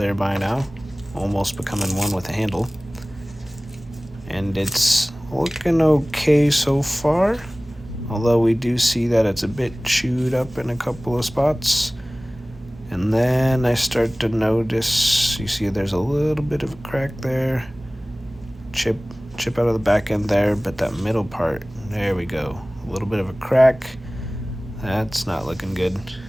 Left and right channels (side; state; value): both; normal; correlation 0.98